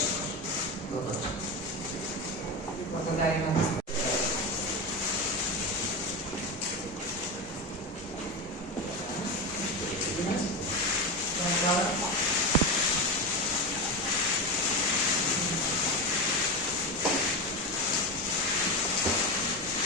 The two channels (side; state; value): both; normal; correlation 0.19